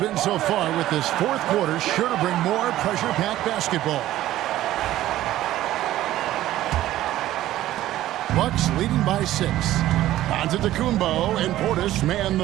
so far, with this 4th quarter sure to bring more pressure-packed basketball. Bucks leading by 6. Antetokounmpo and Portis man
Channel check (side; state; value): left; quieter; 14.3 dB